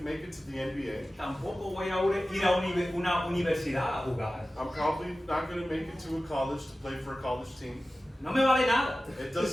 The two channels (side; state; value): both; normal; correlation 0.96